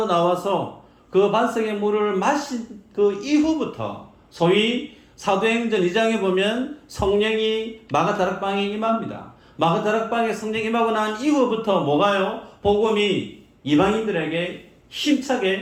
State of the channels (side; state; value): both; identical; correlation 1.00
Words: 나와서 그 반석의 물을 마신 그 이후부터, 소위 사도행전 2장에 보면 성령이 마가다락방에 임합니다. 마가다락방에 성령이 임하고 난 이후부터 뭐가요? 복음이 이방인들에게